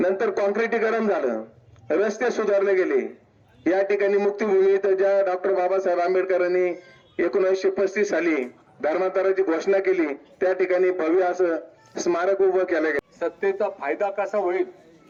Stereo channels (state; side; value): identical; both; correlation 1.00